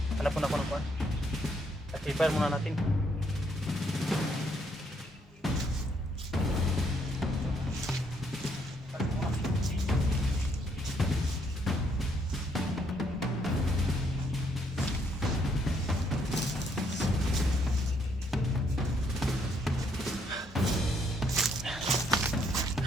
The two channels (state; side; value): normal; both; correlation 0.71